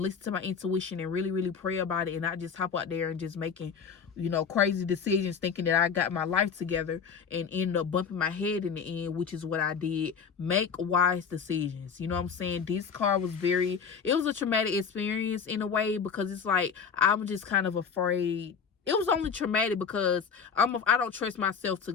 listen to my intuition, and really, really pray about it, and not just hop out there and just making, you know, crazy decisions thinking that I got my life together and end up bumping my head in the end, which is what I did. Make wise decisions. You know what I'm saying? This car was it was a traumatic experience in a way, because it's like, I'm just kind of afraid. It was only traumatic because I don't trust myself to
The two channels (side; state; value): right; quieter; 6.3 dB